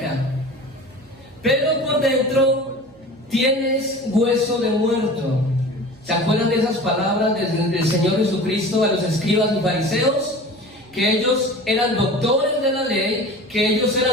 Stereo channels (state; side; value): noise; right; hum, 27 dB below the sound